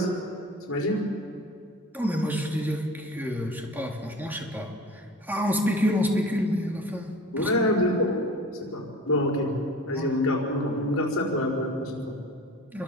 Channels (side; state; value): both; normal; correlation 0.40